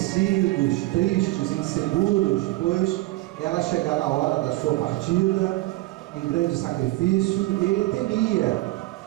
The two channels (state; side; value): quieter; left; 19.2 dB